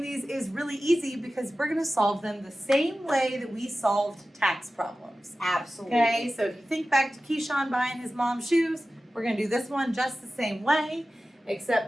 these is really easy because we're going to solve them the same way that we solved tax problems. Absolutely. Okay, so if you think back to Keyshawn buying his mom's shoes, we're going to do this one just the same way, except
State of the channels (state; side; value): normal; both; correlation 0.95